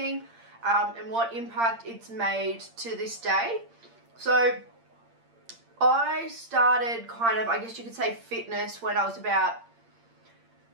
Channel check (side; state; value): left; late; 8.7 ms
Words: and what impact it's made to this day. So, I started kind of, I guess you could say, fitness when I was about